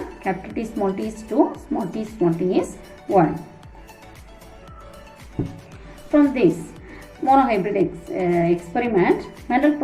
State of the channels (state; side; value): identical; both; correlation 1.00